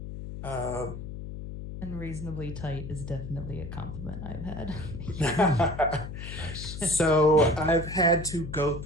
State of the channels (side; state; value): left; noise; hum, 9 dB below the sound